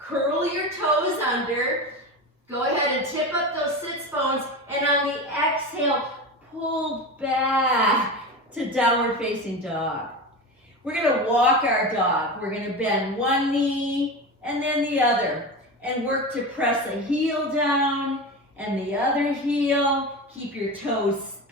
your toes under. Go ahead and tip up those sits bones, and on the exhale, pull back to downward facing dog. We're gonna walk our dog. We're gonna bend one knee and then the other, and work to press a heel down and the other heel. Keep your toes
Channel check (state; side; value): normal; both; correlation 0.25